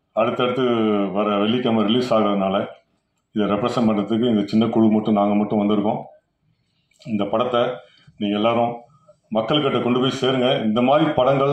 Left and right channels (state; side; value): identical; both; correlation 1.00